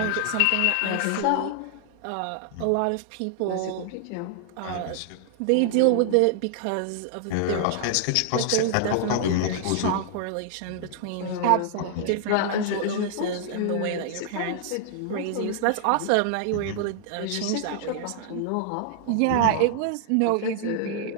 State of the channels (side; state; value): both; different; correlation 0.00